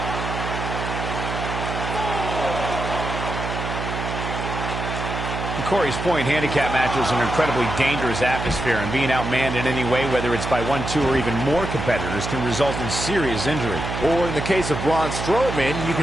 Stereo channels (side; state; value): right; noise; hum, 5 dB below the sound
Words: To Corey's point, handicap matches are an incredibly dangerous atmosphere, and being outmanned in any way, whether it's by 1, 2, or even more competitors, can result in serious injury. Or in the case of Braun Strowman, you